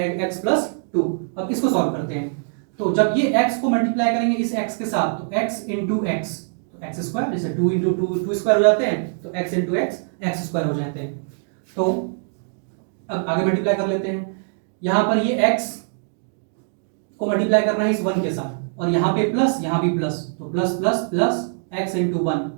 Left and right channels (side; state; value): left; silent; digital silence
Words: x + 2। अब इसको सॉल्व करते हैं। तो जब ये x को मल्टीप्लाई करेंगे इस x के साथ, तो x * x, तो x², जैसे 2 * 2 2² हो जाते हैं, तो x * x x² हो जाते हैं। तो अब आगे मल्टीप्लाई कर लेते हैं। यहाँ पर ये x को मल्टीप्लाई करना है इस 1 के साथ, और यहाँ पे प्लस यहाँ भी प्लस, तो plus plus plus x * 1